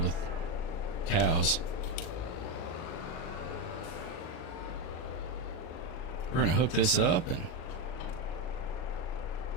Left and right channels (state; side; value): late; right; 38 ms